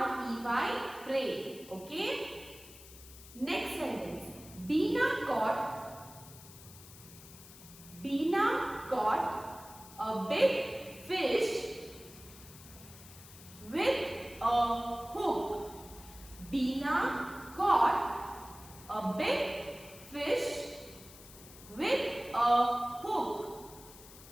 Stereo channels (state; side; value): noise; left; hiss, 18 dB below the sound